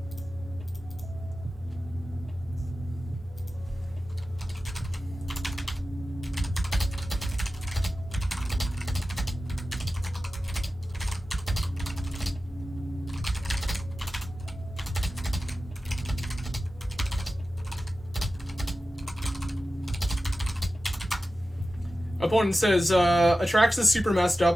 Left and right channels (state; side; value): normal; both; correlation 0.94